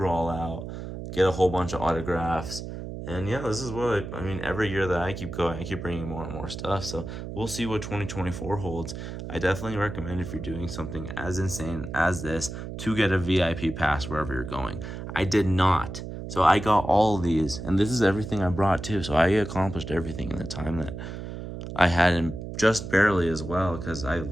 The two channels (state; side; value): noise; right; hum, 8 dB below the sound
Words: all out, get a whole bunch of autographs. And yeah, this is what I mean, every year that I keep going, I keep bringing more and more stuff. So we'll see what 2024 holds. I definitely recommend, if you're doing something as insane as this, to get a VIP pass wherever you're going. I did not. So I got all of these, and this is everything I brought too. So I accomplished everything in the time that I had, and just barely as well, because I